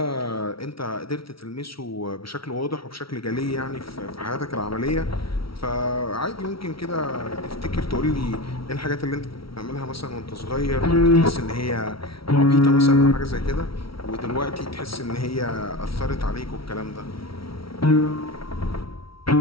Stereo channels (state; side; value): late; right; 0.75 ms